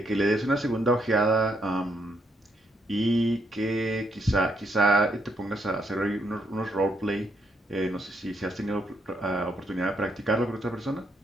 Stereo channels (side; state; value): both; normal; correlation 0.75